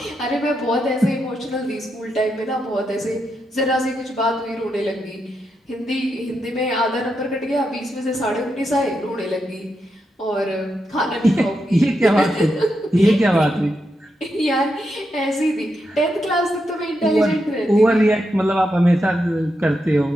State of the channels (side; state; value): both; normal; correlation 0.84